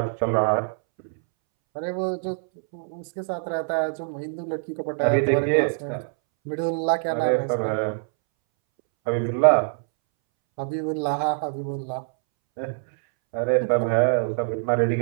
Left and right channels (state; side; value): silent; left; 62 dB below the other